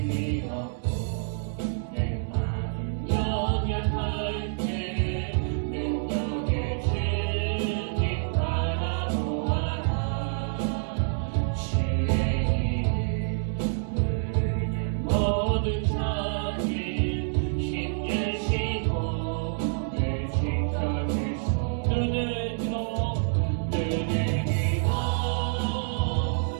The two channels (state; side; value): silent; left; 58 dB below the other